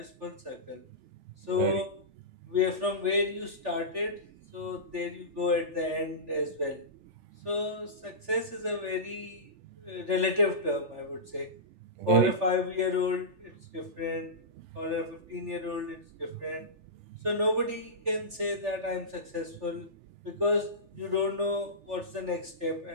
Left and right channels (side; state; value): left; late; 3.4 ms